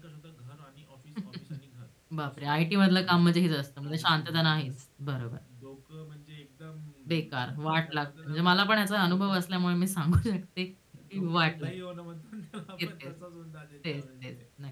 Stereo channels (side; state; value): both; identical; correlation 1.00